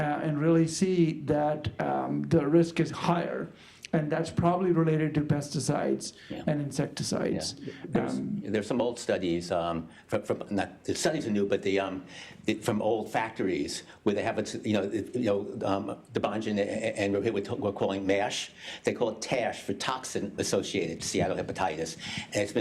really see that the risk is higher. And that's probably related to pesticides and insecticides. There's some old studies, from not the studies are new, but from old factories where they have Debanjan and we're calling MASH. They call it TASH for toxin-associated steatohepatitis, and it's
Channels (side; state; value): both; identical; correlation 1.00